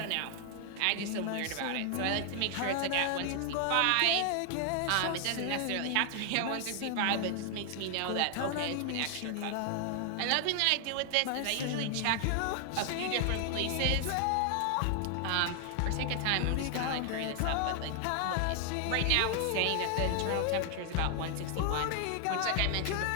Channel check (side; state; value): both; different; correlation 0.00